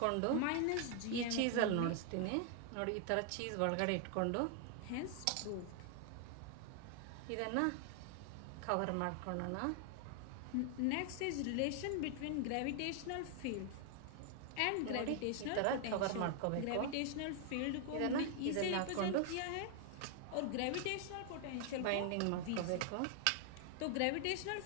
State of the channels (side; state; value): both; different; correlation 0.00